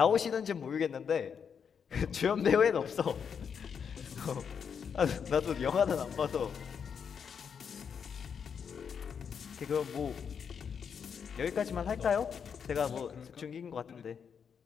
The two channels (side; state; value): right; quieter; 7.0 dB